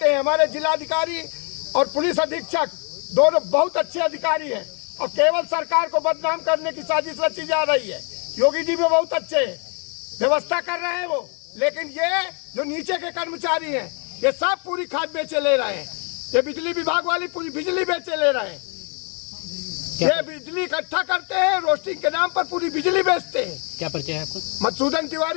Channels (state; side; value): quieter; right; 36.4 dB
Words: हैं, हमारे जिलाधिकारी और पुलिस अधीक्षक दोनों बहुत अच्छे अधिकारी हैं, और केवल सरकार को बदनाम करने की साजिश रची जा रही है। योगी जी भी बहुत अच्छे हैं, व्यवस्था कर रहे हैं वो, लेकिन ये जो नीचे के कर्मचारी हैं, ये सब पूरी खाद बेचे ले रहे हैं। ये बिजली विभाग वाली पूरी बिजली बेचे ले रहे हैं। ये बिजली इकट्ठा करते हैं, रोस्टिंग के नाम पर पूरी बिजली बेचते हैं। क्या परिचय है आपको? मधुसूदन